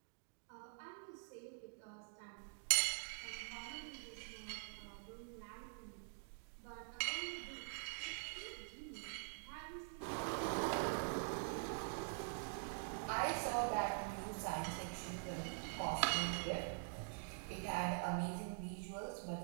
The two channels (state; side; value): silent; left; digital silence